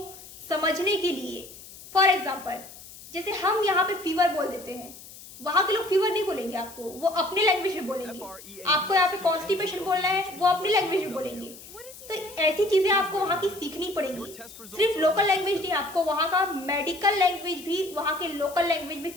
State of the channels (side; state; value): left; noise; hiss, 17 dB below the sound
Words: समझने के लिए, फॉर एग्जाम्पल जैसे हम यहाँ पे फीवर बोल देते हैं, वहां के लोग फीवर नहीं बोलेंगे आपको, वो अपने लैंग्वेज में बोलेंगे। आपको यहाँ पे कॉन्स्टिपेशन बोलना है, वो अपनी लैंग्वेज में बोलेंगे। तो ऐसी चीजें आपको वहां की सीखनी पड़ेगी। सिर्फ लोकल लैंग्वेज नहीं, आपको वहां का मेडिकल लैंग्वेज भी वहां के लोकल लैंग्वेज में